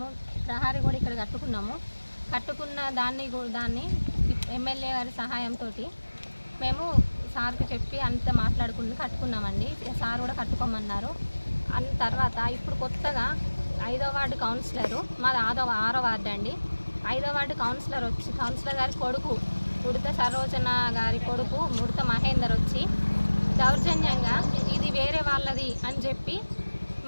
ప్రహారీ కూడా ఇక్కడ కట్టుకున్న దాన్ని ఎమ్మెల్యే గారి సహాయంతో మేము సార్కి చెప్పి అంతా కట్టుకున్నామండి. సార్ కూడా కట్టుకోమన్నారు. అన్న తర్వాత ఇప్పుడు కొత్తగా 5వ వార్డు కౌన్సిలరు, మాది 6వ వార్డు అండి. 5వ వార్డు కౌన్సిలర్ గారి కొడుకు ఉడత సరోజన గారి కొడుకు ఉడత మహేందర్ వచ్చి దౌర్జన్యంగా ఇది వేరే వాళ్ళది అని చెప్పి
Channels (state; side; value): inverted; both; correlation -1.00